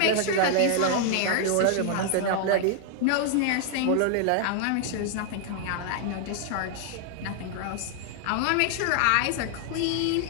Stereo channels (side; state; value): both; different; correlation 0.00